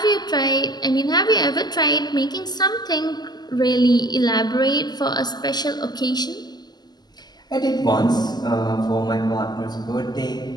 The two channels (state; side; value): late; right; 0.20 ms